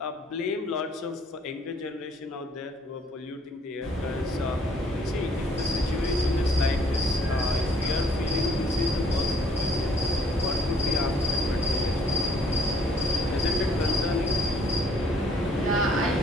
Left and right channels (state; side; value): normal; both; correlation 0.63